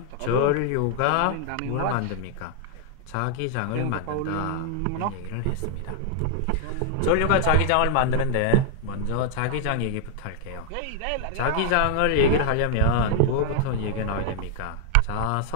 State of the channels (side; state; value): both; different; correlation 0.00